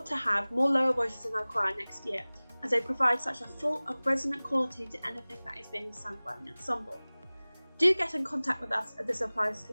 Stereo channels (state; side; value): inverted; both; correlation -1.00